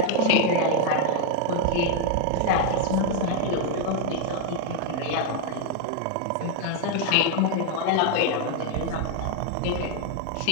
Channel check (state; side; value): different; both; correlation 0.01